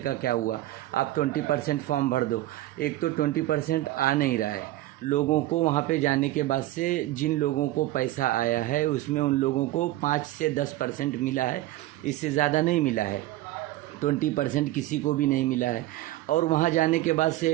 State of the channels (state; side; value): quieter; left; 16.1 dB